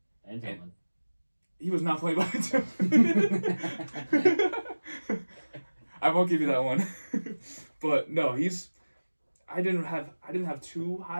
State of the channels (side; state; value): both; inverted; correlation -1.00